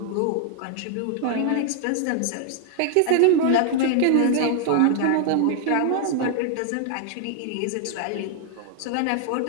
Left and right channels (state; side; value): different; both; correlation 0.00